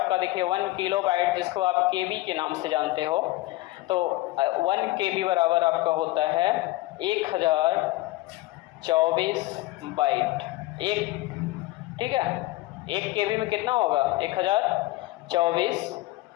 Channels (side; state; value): right; quieter; 18.6 dB